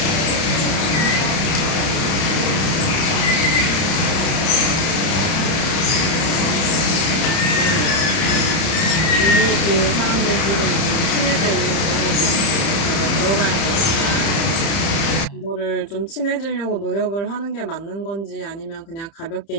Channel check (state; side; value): late; right; 30 ms